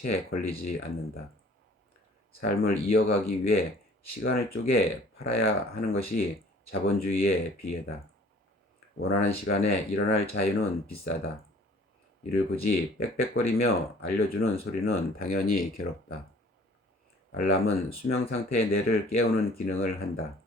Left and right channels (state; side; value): normal; both; correlation 0.52